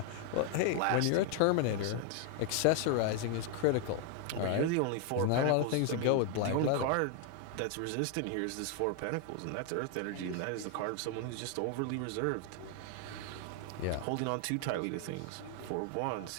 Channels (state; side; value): different; both; correlation 0.00